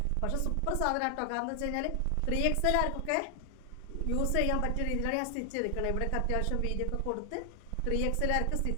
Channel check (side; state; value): both; different; correlation 0.00